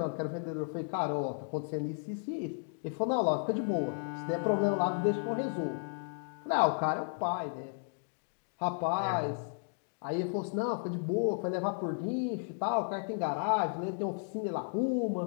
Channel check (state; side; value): silent; right; digital silence